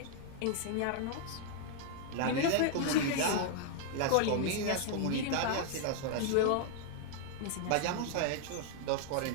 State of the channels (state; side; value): different; both; correlation 0.00